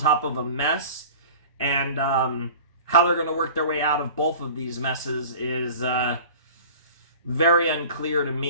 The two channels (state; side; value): inverted; both; correlation -0.41